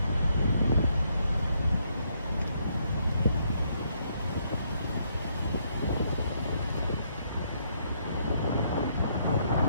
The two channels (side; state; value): both; inverted; correlation -0.72